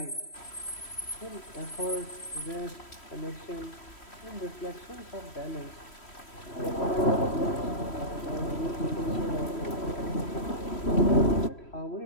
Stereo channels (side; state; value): right; late; 3.1 ms